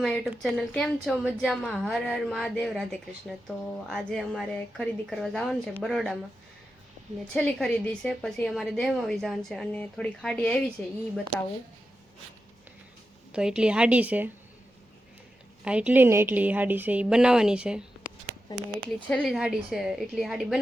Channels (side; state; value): both; normal; correlation 0.90